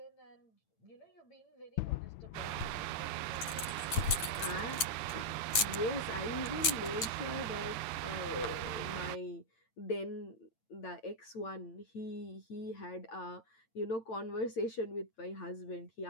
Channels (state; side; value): late; right; 8.9 ms